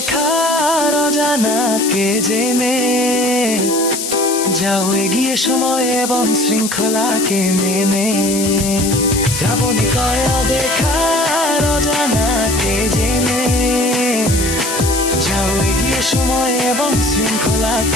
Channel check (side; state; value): left; noise; hiss, 4 dB below the sound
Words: অজানাকে জেনে, যাও এগিয়ে সময় এবং শৃঙ্খলাকে মেনে। শ্রাবণে কয় দেখার অজানাকে জেনে, যাও এগিয়ে সময় এবং